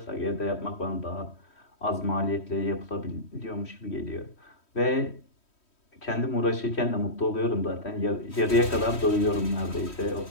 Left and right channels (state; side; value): late; right; 3.1 ms